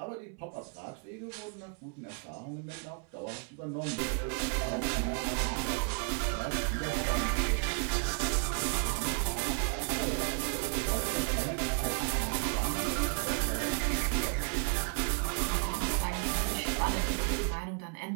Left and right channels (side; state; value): left; quieter; 39.1 dB